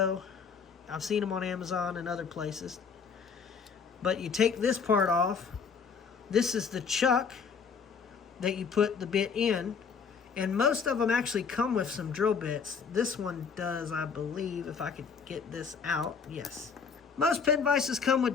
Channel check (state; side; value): quieter; right; 5.9 dB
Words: I've seen them on Amazon and other places. But you take this part off. This is the chuck that you put the bit in. And most of them actually come with some drill bits. This one does, I believe, if I could get this out. Yes. Most pin vices come with